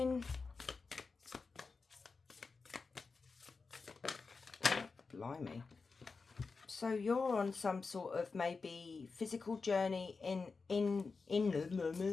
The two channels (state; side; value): quieter; right; 4.5 dB